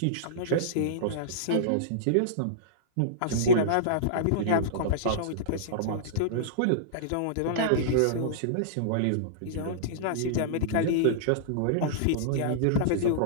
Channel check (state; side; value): different; both; correlation -0.03